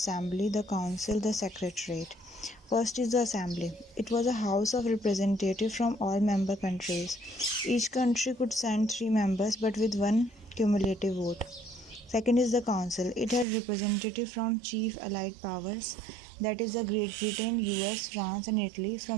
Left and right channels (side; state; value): left; drops out; at 13.5 s